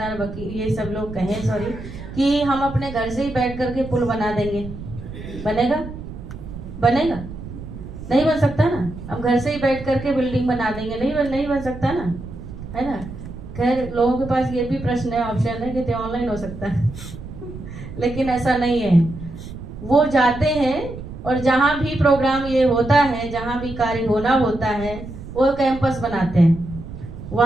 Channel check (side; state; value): right; noise; rumble, 11 dB below the sound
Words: वकील, ये सब लोग कहें सॉरी कि हम अपने घर से ही बैठ करके पुल बना देंगे, बनेगा? बनेगा? नहीं बन सकता ना। हम घर से ही बैठ करके बिल्डिंग बना देंगे, नहीं बन सकता ना, है ना। खैर लोगों के पास ये भी प्रश्न है, ऑप्शन है कि ऑनलाइन हो सकता है लेकिन ऐसा नहीं है। वो जाते हैं और जहां भी प्रोग्राम ये होता है, जहां भी कार्य होना होता है, वो कैंपस बनाते हैं,